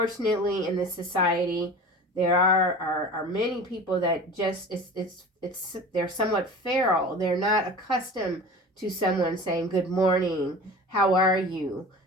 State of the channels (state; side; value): normal; both; correlation 0.37